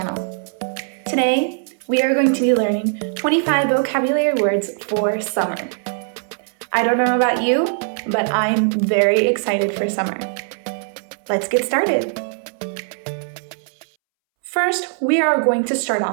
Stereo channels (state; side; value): silent; left; 65 dB below the other